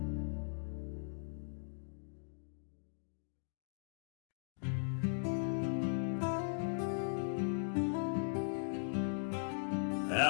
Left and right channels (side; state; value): right; silent; digital silence